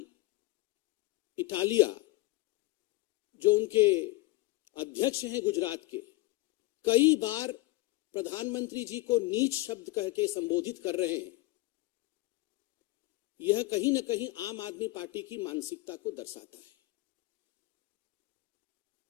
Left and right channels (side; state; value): right; quieter; 20.3 dB